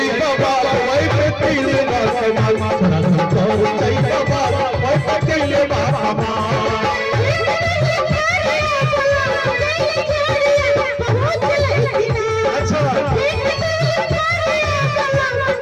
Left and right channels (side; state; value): both; identical; correlation 1.00